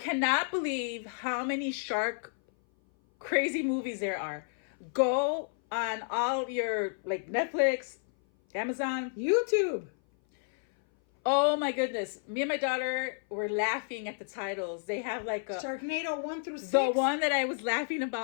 believe how many shark crazy movies there are. Go on all your, like, Netflix, Amazon, YouTube. Oh my goodness. Me and my daughter were laughing at the titles. They have like a... Sharknado 1 through 6. The one that I was laughing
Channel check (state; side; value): silent; right; 56 dB below the other